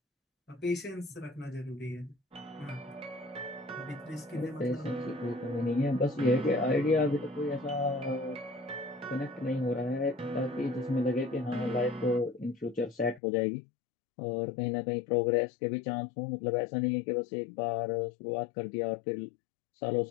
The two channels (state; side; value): drops out; right; at 13.2 s